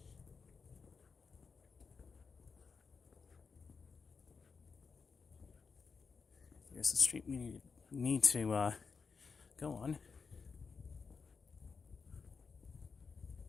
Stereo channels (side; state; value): right; quieter; 5.2 dB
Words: Here's the street we need to go on.